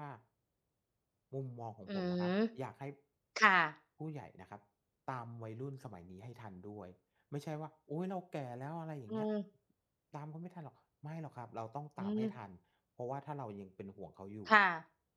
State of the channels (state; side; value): identical; both; correlation 1.00